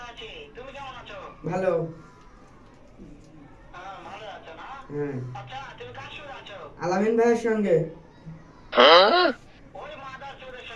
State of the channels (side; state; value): both; identical; correlation 1.00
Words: আছি। তুমি কেমন আছো? ভালো। হ্যাঁ, ভালো আছো না? হ্যাঁ, আচ্ছা, তুমি কার সঙ্গে আছো? আলামিন ভাইয়ের সঙ্গে। ওই মাদার চোরের